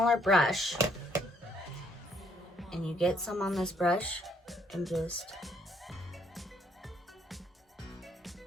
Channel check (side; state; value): both; normal; correlation 0.68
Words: brush. And you get some on this brush and just